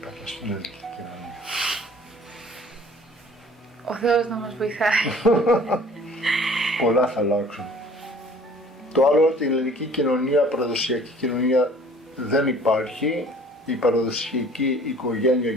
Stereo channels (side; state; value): both; normal; correlation 0.51